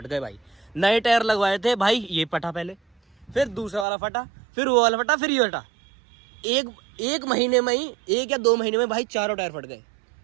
गए भाई। नए टायर लगवाए थे भाई, ये फटा पहले, फिर दूसरा वाला फटा, फिर वो वाला फटा, फिर ये फटा, एक महीने में ही, 1 या 2 महीने में भाई चारों टायर फट गए,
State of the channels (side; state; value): left; drops out; at 3.9 s